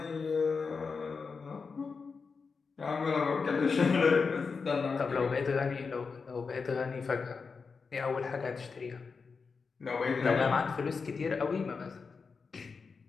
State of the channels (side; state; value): right; quieter; 5.0 dB